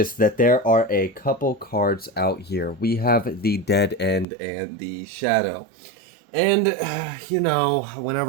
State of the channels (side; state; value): left; drops out; at 4.2 s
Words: that there are a couple cards out here. We have the Dead End and the Shadow. And, you know,